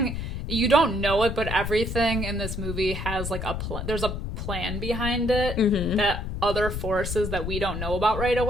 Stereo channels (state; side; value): noise; left; rumble, 4 dB below the sound